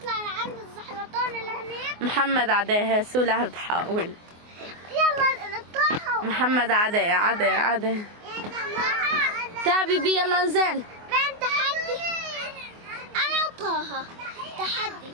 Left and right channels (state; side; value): late; left; 24 ms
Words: لعند الزحلطان اللي هناك. محمد عدي. سولة بتحاول. يلا نطلعها. محمد عدي. تعبي بي. يلا انزل. بين تحدي أنا وطه. تحدي.